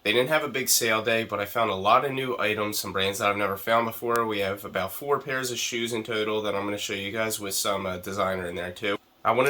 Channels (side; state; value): both; identical; correlation 1.00